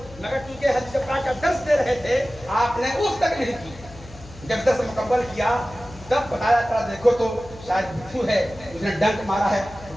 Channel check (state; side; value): noise; left; hum, 18 dB below the sound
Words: مگر چونکہ حدیث پاک کا درس دے رہے تھے آپ نے اس تک نہیں کی. جب درس مکمل کیا تب بتایا تھا دیکھو تو شاید بچھو ہے، اس نے ڈنک مارا ہے.